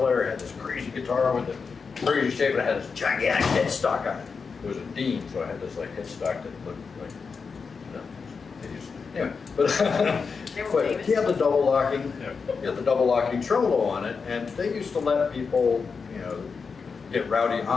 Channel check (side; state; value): right; quieter; 5.3 dB